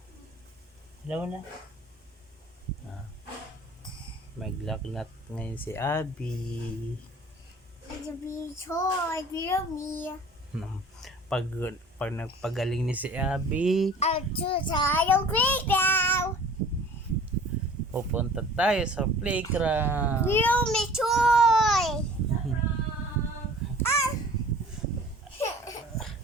Hello na. Ah, maglagnat ngayon si Abby. Pag, pag nagpagaling ni si Abby, pupunta tayo sa playground.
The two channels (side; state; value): both; normal; correlation 0.47